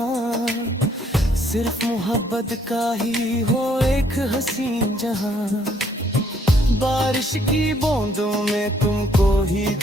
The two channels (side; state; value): both; normal; correlation 0.66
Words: सिर्फ मोहब्बत का ही हो एक हसीन जहां। बारिश की बूंदों में तुमको ही